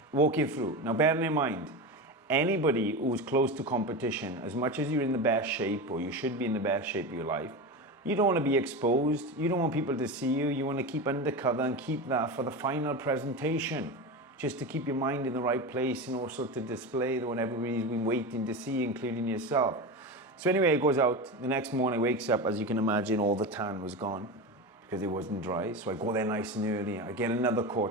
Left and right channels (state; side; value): normal; both; correlation 0.23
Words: walking through. Now, bearing in mind, anybody who's close to competition, as much as you're in the best shape, or you should be in the best shape of your life, you don't want to be exposed. You don't want people to see you. You want to keep undercover and keep that for the final presentation, just to keep your mind in the right place and also to display what everybody's been waiting to see, including yourself. So anyway, it goes out. The next morning, wakes up, as you can imagine, all the tan was gone because it wasn't dry. So I go there nice and early. I get another